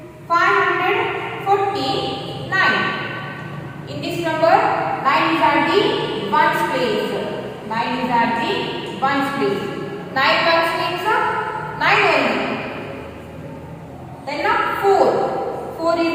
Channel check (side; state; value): both; identical; correlation 1.00